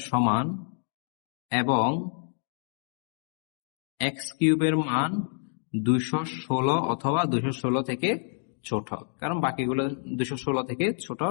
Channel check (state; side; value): silent; right; 59 dB below the other